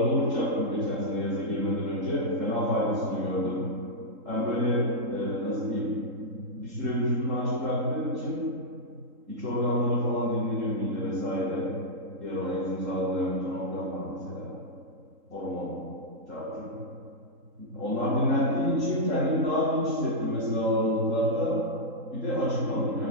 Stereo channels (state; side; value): late; left; 3.8 ms